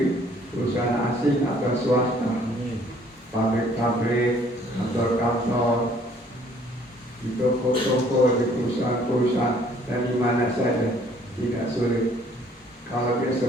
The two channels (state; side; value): normal; both; correlation 0.59